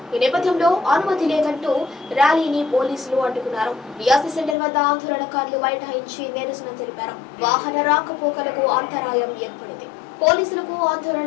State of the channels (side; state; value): right; drops out; at 4.5 s